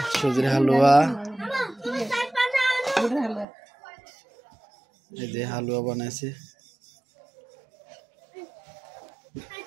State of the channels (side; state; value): left; drops out; at 3.5 s